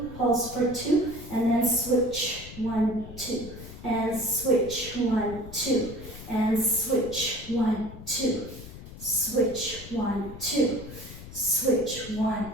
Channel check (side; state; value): left; noise; rumble, 14 dB below the sound